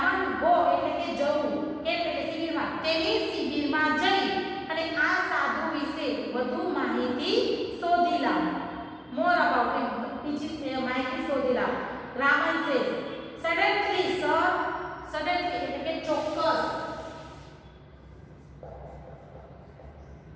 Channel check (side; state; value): both; identical; correlation 1.00